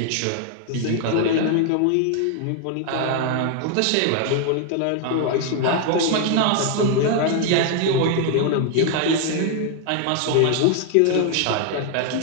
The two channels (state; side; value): different; both; correlation 0.00